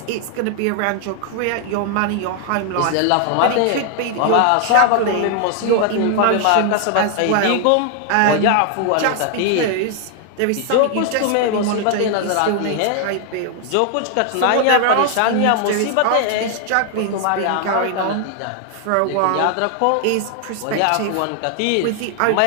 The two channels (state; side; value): different; both; correlation 0.00